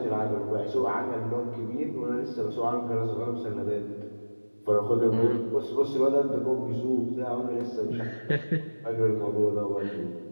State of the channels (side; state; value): both; inverted; correlation -1.00